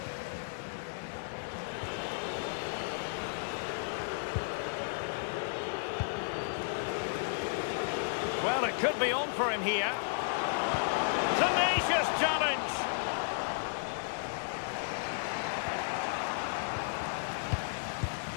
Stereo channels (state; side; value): silent; right; 55 dB below the other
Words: Well, it could be on for him here. Tenacious challenge.